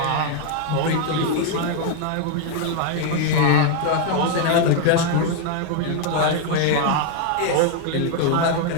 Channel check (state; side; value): different; both; correlation 0.00